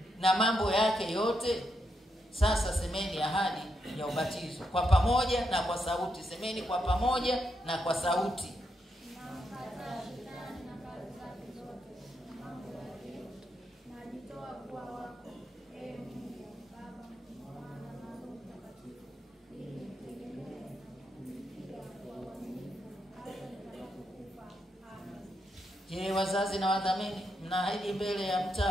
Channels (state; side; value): normal; both; correlation 0.82